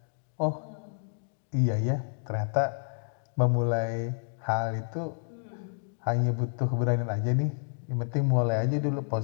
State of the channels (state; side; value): silent; right; digital silence